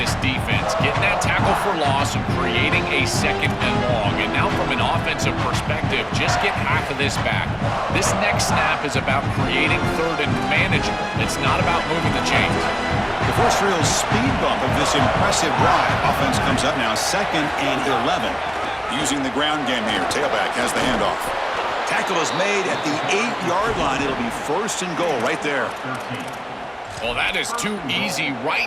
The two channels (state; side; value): identical; both; correlation 1.00